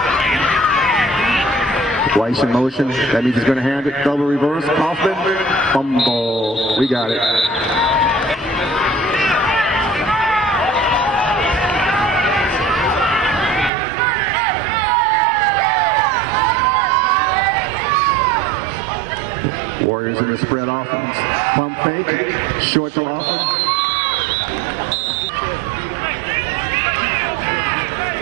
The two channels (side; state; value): left; drops out; at 13.7 s